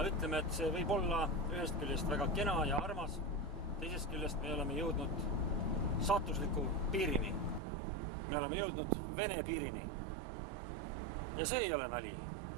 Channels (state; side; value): drops out; left; at 7.6 s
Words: ütleme, et see võib olla ühest küljest väga kena ja armas. Teisest küljest me oleme jõudnud saatusliku piirini. Me oleme jõudnud Vene piirini. Ja see ei ole nali.